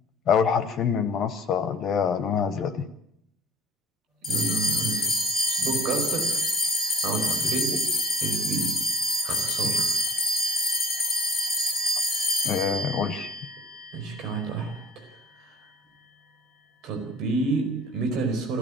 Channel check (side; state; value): both; normal; correlation 0.51